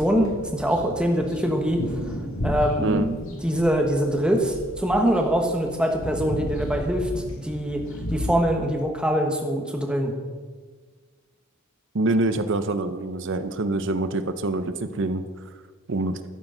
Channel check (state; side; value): normal; both; correlation 0.66